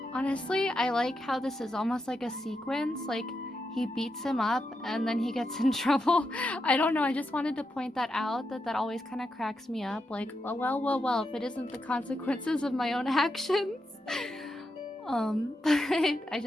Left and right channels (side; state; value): both; normal; correlation 0.85